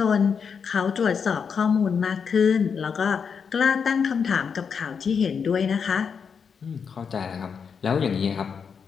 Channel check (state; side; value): quieter; right; 6.3 dB